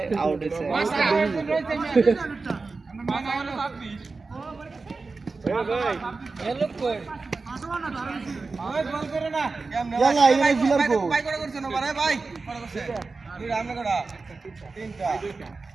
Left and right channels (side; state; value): left; quieter; 4.0 dB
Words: আউট হইছে ইয়ালা ইনে ফিলার কো ভাই করে করছ না ভাই ভাই করে করছে তুই রামনে করা তিনটা